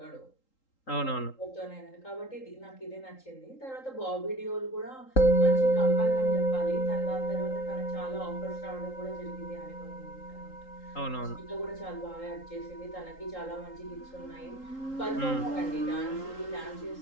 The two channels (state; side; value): late; right; 3.8 ms